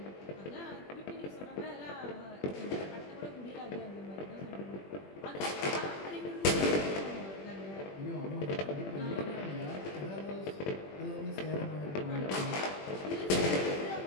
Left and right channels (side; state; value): right; late; 21 ms